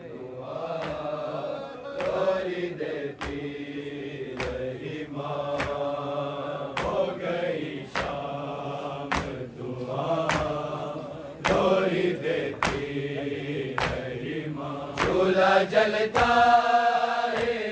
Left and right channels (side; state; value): both; identical; correlation 1.00